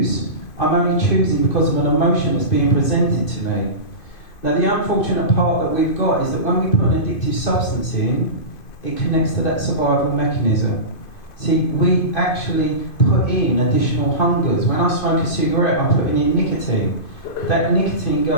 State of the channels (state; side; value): late; right; 2.5 ms